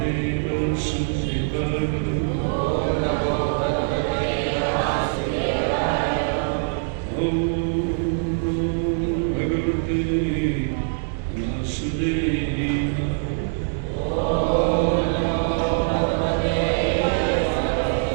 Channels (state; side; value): silent; left; digital silence